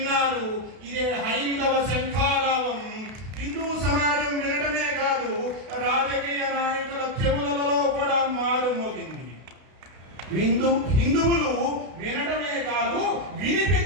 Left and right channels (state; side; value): late; left; 32 ms